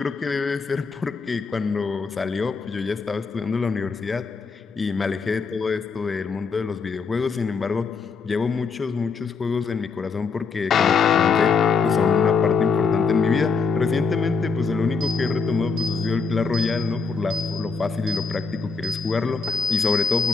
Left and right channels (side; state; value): right; quieter; 5.0 dB